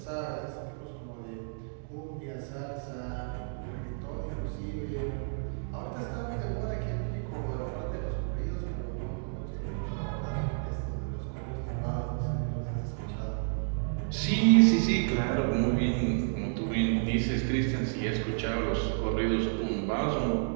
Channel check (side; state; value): left; silent; digital silence